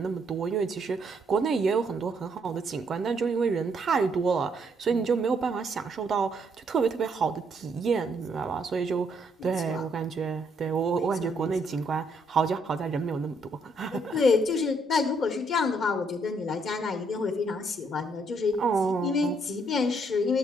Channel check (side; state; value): both; normal; correlation 0.71